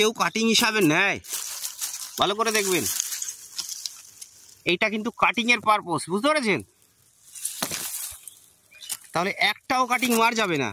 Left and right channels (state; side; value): identical; both; correlation 1.00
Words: কাটিং হিসাবে নেয়, ভালো করে দেখবেন, এইটা কিন্তু কাটিং এর পারপোজ, বুঝতে পেরেছেন? তাহলে একটাও কাটিং মার যাবে না।